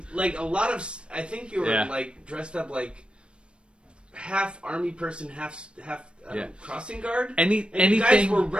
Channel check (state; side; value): late; left; 0.057 ms